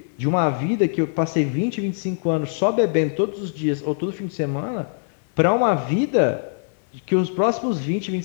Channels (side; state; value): right; silent; digital silence